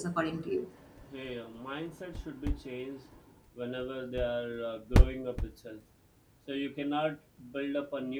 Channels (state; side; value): identical; both; correlation 1.00